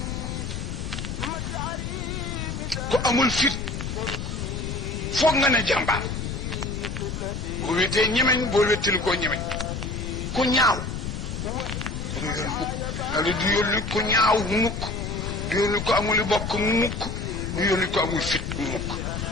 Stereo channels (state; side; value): noise; left; rumble, 5 dB below the sound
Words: ku amul fit foog nga ne jàmbaar boo wetee ñemeñ boo wettili koo ñemeñ ku ñaaw du yónni mukk nga li du yónni ku ñaaw mukk du yónni ko amuli bokk mukk du yónni ko amul fit mukk